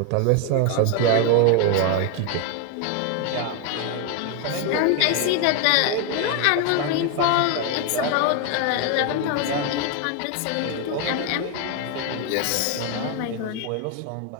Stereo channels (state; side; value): different; both; correlation 0.01